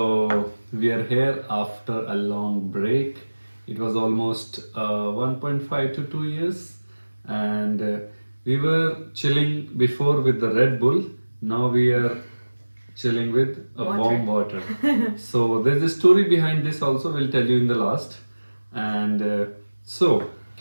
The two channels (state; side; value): inverted; both; correlation -1.00